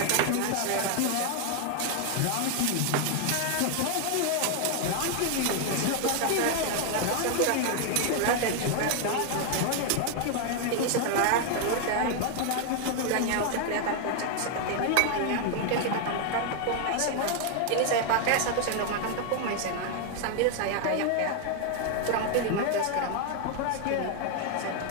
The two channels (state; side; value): different; both; correlation 0.00